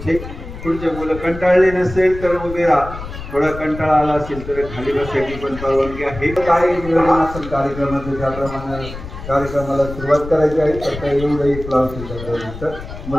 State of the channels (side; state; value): left; noise; rumble, 11 dB below the sound